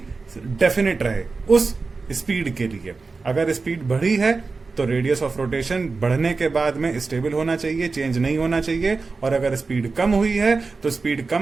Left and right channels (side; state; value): left; quieter; 4.2 dB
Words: डेफिनेट रहे उस स्पीड के लिए. अगर स्पीड बढ़ी है तो रेडियस ऑफ रोटेशन बढ़ने के बाद में स्टेबल होना चाहिए, चेंज नहीं होना चाहिए. और अगर स्पीड कम हुई है तो स्पीड